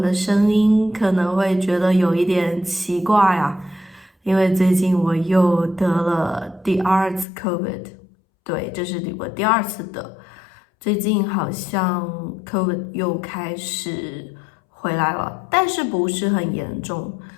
的声音，可能会觉得有一点奇怪啊，因为最近我又得了第二次 COVID，对，这是我第二次得，最近好像 COVID 又开始回来了，但是不是很严重。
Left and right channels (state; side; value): drops out; right; at 7.2 s